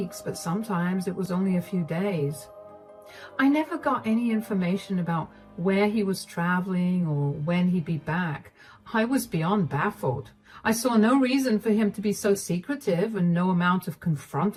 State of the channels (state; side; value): identical; both; correlation 1.00